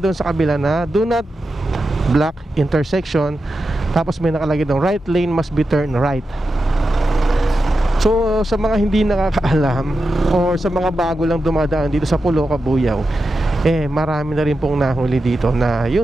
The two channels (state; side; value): normal; both; correlation 0.90